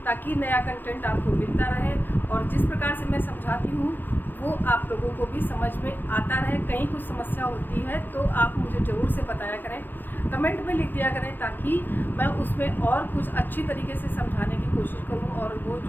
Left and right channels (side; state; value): right; late; 0.091 ms